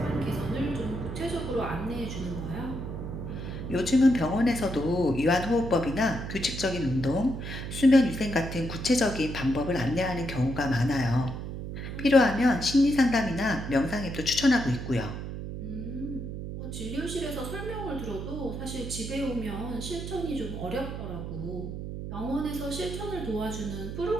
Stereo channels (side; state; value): right; noise; hum, 7 dB below the sound